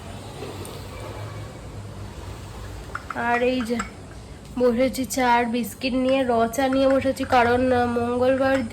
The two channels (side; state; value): both; identical; correlation 1.00